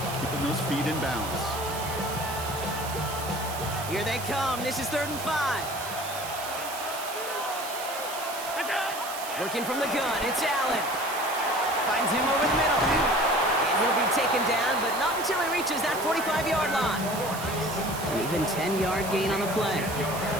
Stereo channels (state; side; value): noise; right; hiss, 9 dB below the sound